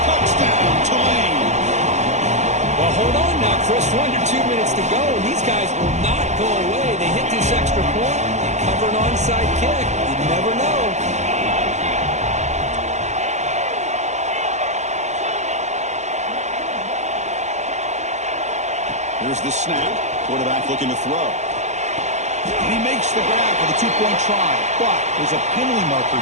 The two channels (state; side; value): late; left; 0.33 ms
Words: Touchdown, Tulane. Well, hold on now, Chris. 1 or 2 minutes to go. These guys will not go away. They hit this extra point. They cover an onside kick. You never know. Here's the snap. Quarterback looking to throw. And he makes the grab for the two-point try. But there's a penalty marker